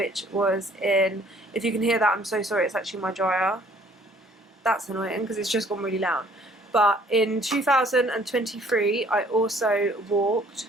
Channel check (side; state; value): both; normal; correlation 0.58